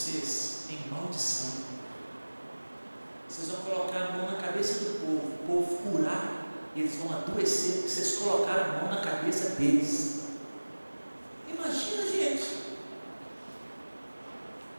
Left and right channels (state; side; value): inverted; both; correlation -1.00